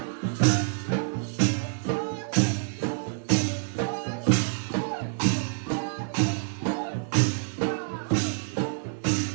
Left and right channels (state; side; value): silent; left; 60 dB below the other